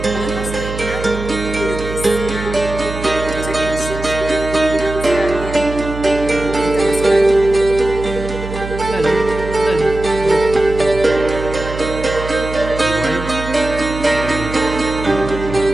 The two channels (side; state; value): right; noise; hum, 9 dB below the sound